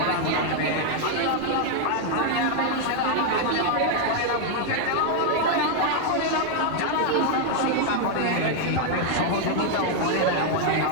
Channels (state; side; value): different; both; correlation 0.00